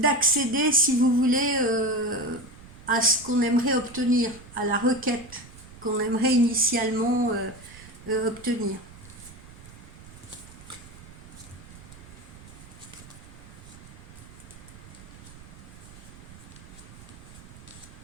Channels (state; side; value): noise; right; rumble, 18 dB below the sound